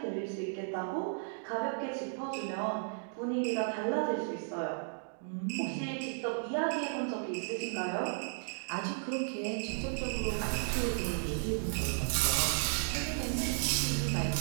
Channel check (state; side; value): silent; left; digital silence